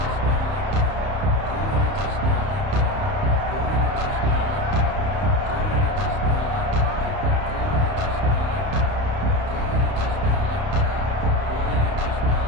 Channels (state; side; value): late; left; 31 ms